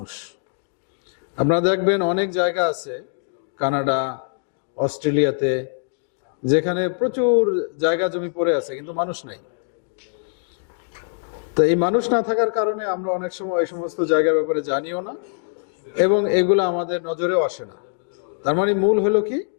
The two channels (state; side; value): silent; right; digital silence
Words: আপনারা দেখবেন অনেক জায়গা আছে, কানাডা, অস্ট্রেলিয়াতে, যেখানে প্রচুর জায়গা জমি পড়ে আছে কিন্তু মানুষ নাই। তো এই মানুষ না থাকার কারণে আমরা অনেক সময় এই সমস্ত জায়গার ব্যাপারে জানিও না এবং এগুলো আমাদের নজরেও আসে না। তার মানে মূল হলো কি?